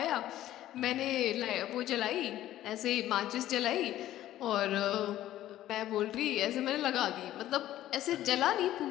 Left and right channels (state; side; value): quieter; right; 13.5 dB